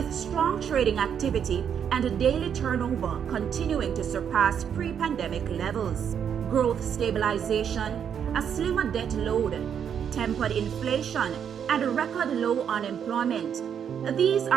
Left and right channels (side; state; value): left; quieter; 8.1 dB